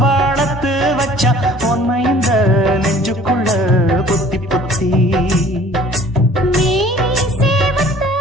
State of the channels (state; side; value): normal; both; correlation 0.52